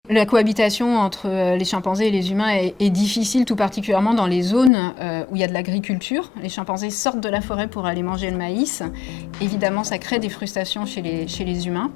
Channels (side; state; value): right; drops out; at 4.7 s